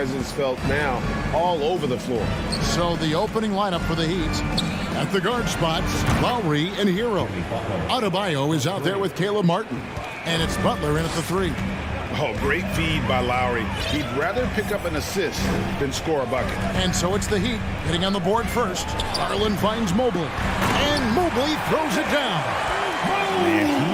felt now all over the floor. So the opening lineup for the Heat. At the guard spots, Lowry and Hero. Adebayo is out there with Caleb Martin. And it's Butler in at the 3. Oh, great feed by Lowry. He'd rather pick up an assist than score a bucket. And so it's the Heat getting on the board first. Garland finds Mobley. And Mobley throws it down. Man,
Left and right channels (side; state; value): both; identical; correlation 1.00